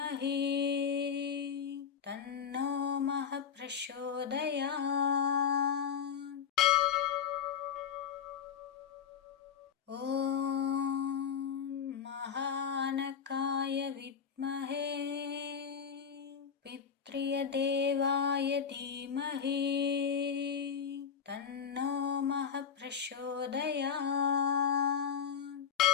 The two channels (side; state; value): right; quieter; 7.4 dB